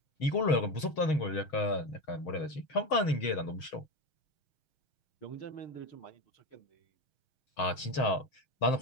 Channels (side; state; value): right; late; 6.3 ms